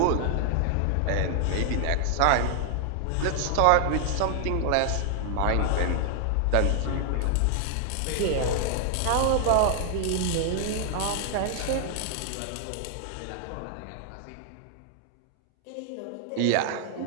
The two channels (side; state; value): both; different; correlation 0.00